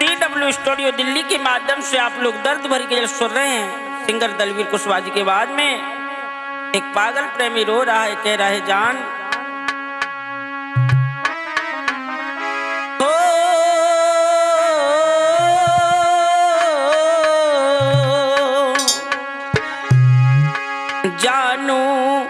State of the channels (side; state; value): both; identical; correlation 1.00